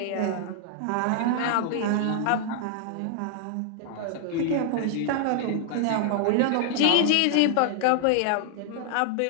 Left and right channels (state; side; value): different; both; correlation 0.00